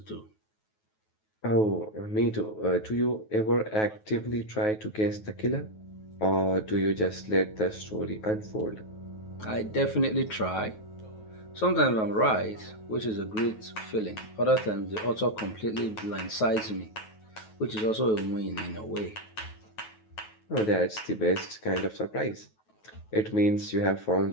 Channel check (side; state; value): right; late; 9.3 ms